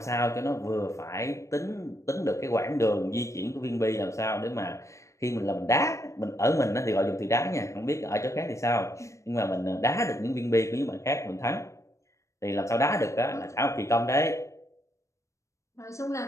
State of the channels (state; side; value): late; right; 0.15 ms